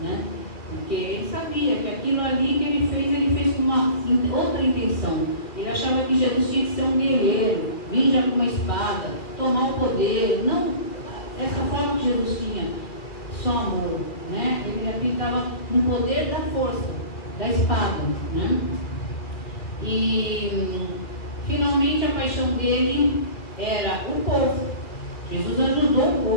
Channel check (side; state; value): right; late; 2.3 ms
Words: né? Porque ele sabia que aquilo ali que ele fez com uma outra intenção. Ele achava que Jesus tinha que ser um guerreiro, vir já com uma espada, tomar o poder. Não, essa forma que Jesus tinha, só amor, né? Ele acreditava no poder da força, da espada, né? E finalmente a paixão dele era o povo. Jesus ajudou o